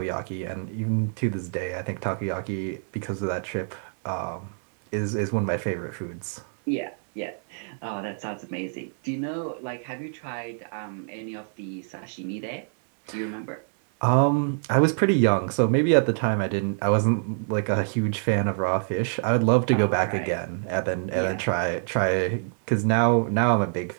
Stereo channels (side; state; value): left; silent; digital silence